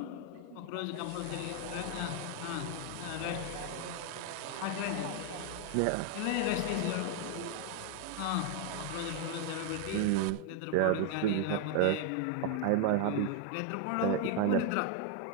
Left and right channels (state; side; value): different; both; correlation 0.00